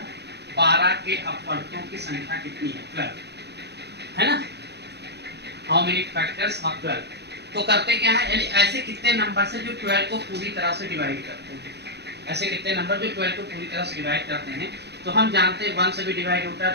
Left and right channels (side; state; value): left; late; 0.49 ms